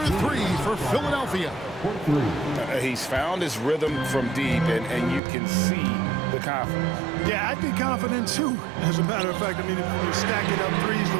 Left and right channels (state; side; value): drops out; left; at 5.2 s